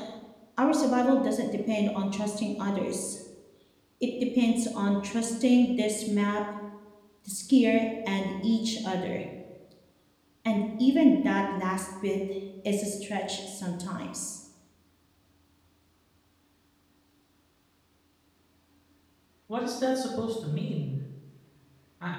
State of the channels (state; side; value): identical; both; correlation 1.00